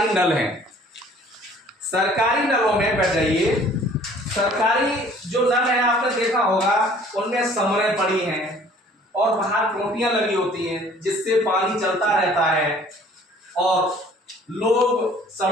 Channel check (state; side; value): normal; both; correlation 0.53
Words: नल हैं। सरकारी नलों में बैठ जाइए। सरकारी जो नल है आपने देखा होगा, उनमें समरें पड़ी हैं और बाहर टोटियां लगी होती हैं जिससे पानी चलता रहता है। और लोग